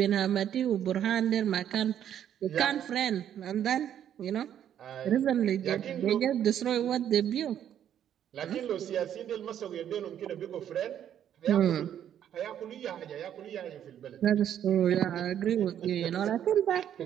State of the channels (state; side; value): quieter; left; 10.0 dB